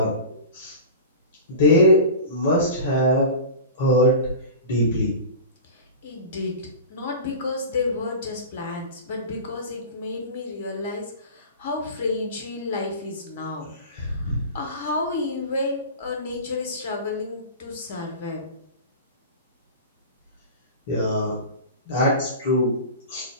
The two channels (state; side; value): inverted; both; correlation -0.32